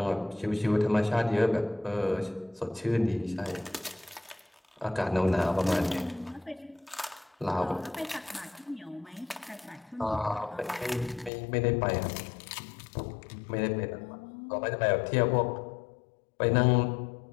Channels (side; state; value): right; drops out; at 11.3 s